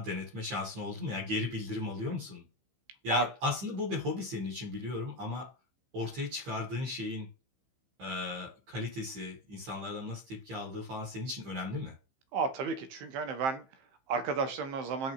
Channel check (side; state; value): left; late; 15 ms